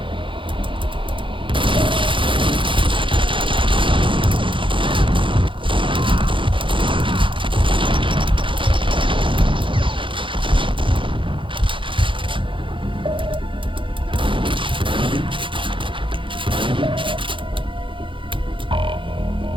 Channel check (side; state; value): left; late; 0.25 ms